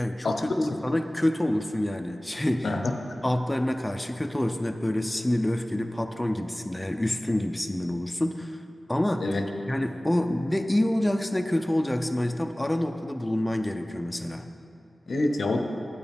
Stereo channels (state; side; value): normal; both; correlation 0.98